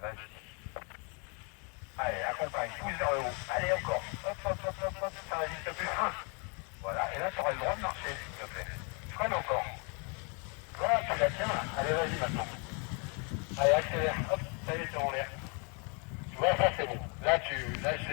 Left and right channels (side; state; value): right; quieter; 35.0 dB